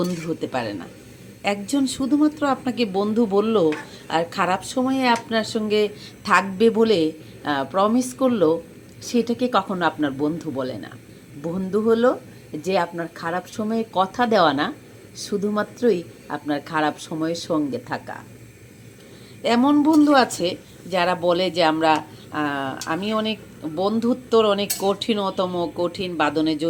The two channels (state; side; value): identical; both; correlation 1.00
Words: হতে পারে না। একজন শুধুমাত্র আপনাকে বন্ধু বলল আর খারাপ সময়ে আপনার সঙ্গে থাকবে বলে প্রমিস করলো, সেটাকে কখনো আপনার বন্ধু বলে না। বন্ধু হলো যে আপনার খারাপ সময়ে কথা দেওয়া না, শুধুমাত্রই আপনার খারাপ সময়ের সঙ্গে থাকা। এমন বন্ধু আছে যারা বলে যে আমি অনেক বন্ধুত্বর অনেক কঠিন বাঁধনে